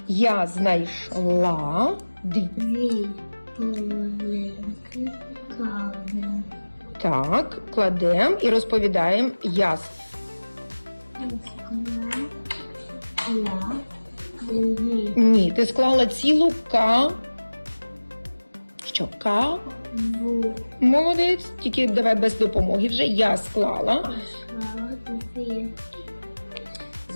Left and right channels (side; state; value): both; inverted; correlation -1.00